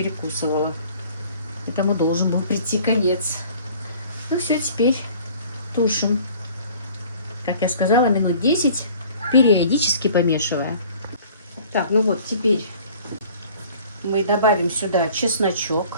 Этому должен был прийти конец. Ну все, теперь тушим. Как я сказала, минут 10, периодически помешивая. Так, ну вот, теперь мы добавим сюда чесночок,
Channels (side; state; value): both; inverted; correlation -0.51